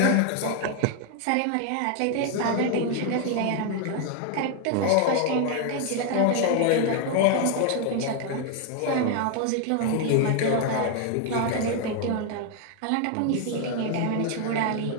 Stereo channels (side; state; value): both; different; correlation 0.00